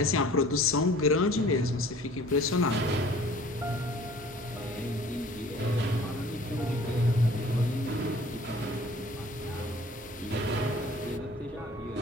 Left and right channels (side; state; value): both; normal; correlation 0.50